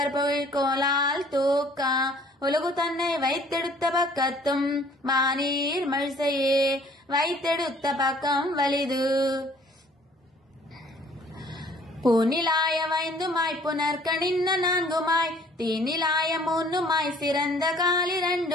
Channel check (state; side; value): normal; both; correlation 0.56